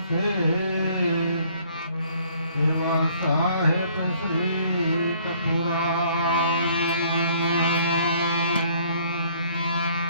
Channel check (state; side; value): inverted; both; correlation -0.60